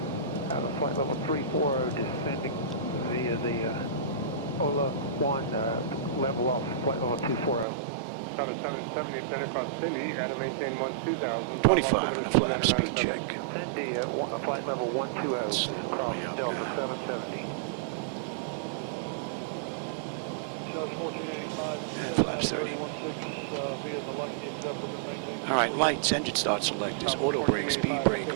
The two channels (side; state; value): left; drops out; at 7.7 s